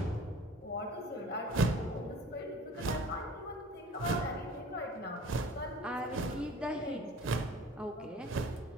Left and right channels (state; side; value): normal; both; correlation 0.45